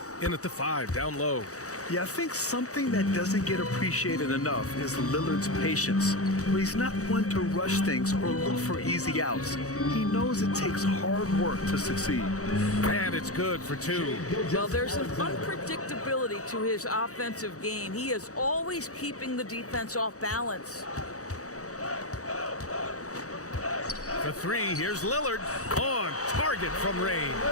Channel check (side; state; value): right; late; 0.65 ms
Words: in at the 5 down low. Yeah, I think something that doesn't get appreciated enough is Lillard's patience. Where he's not one to rush things or look for easy outs. He knows it takes hard work to succeed. And it's good for 2. Well, there's an unpredictability to his offensive game. He is always keeping the defense off balance. For 3, here's Lillard on target from range.